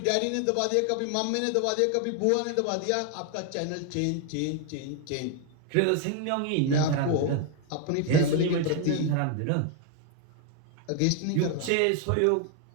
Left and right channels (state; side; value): different; both; correlation 0.01